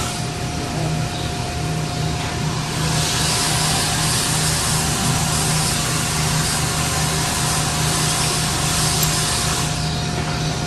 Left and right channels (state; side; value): identical; both; correlation 1.00